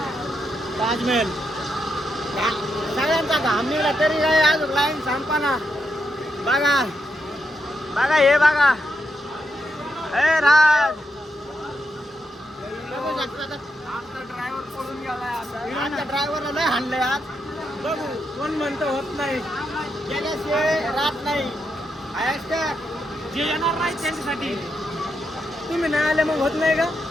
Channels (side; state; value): both; normal; correlation 0.83